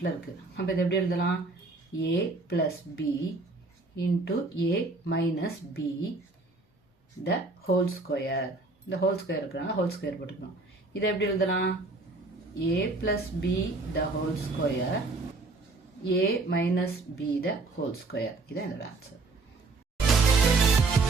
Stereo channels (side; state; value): left; quieter; 3.5 dB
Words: இருக்குது. அப்போ இதை எப்படி எழுதலாம்? ஏ plus B into A minus B the whole square. இந்த ஹோல் ஸ்கொயர் இருக்கிறனால ஹோல் ஸ்கொயர் போட்டுக்கணும். இதை எப்படி எழுதலாம்? ஏ plus B the whole square A minus B the whole square. இதான் இதோட ஆன்சர்.